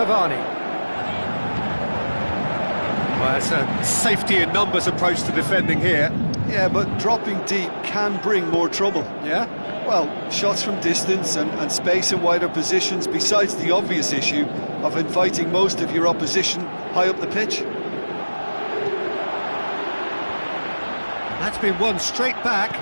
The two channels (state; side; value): inverted; both; correlation -1.00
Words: Well, it's a safety in numbers approach to defending here. Yeah, but dropping deep can bring more trouble. Yeah? Well, shots from distance and space in wider positions, besides the obvious issue of inviting most of your opposition high up the pitch. That's been won straight back.